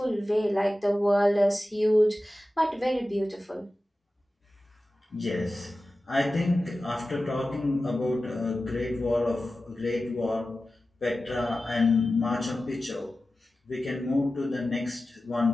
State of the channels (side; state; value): both; normal; correlation 0.95